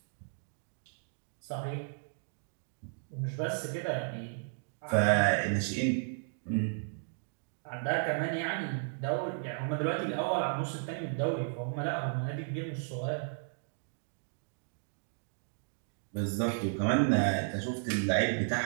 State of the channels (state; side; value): silent; left; digital silence